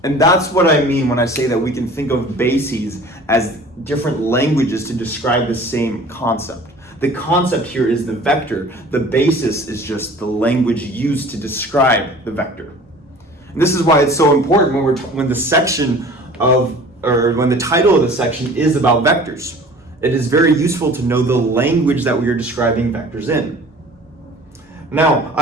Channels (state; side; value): normal; both; correlation 0.45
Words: And that's what I mean when I say that we can think of bases as different languages to describe the same concept. The concept here is the vector. The basis is just the language used to describe the vector. And this is why it's so important when the title of the section is about vectors. It is very useful to know the language that we are describing vectors in. Now,